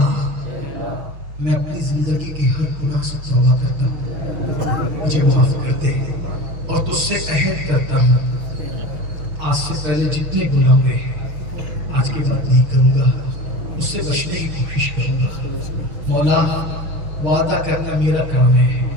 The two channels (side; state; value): left; late; 6.3 ms